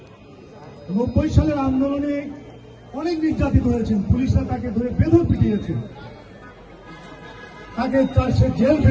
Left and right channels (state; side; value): identical; both; correlation 1.00